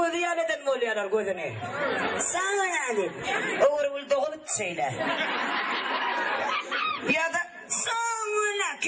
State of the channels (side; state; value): both; identical; correlation 1.00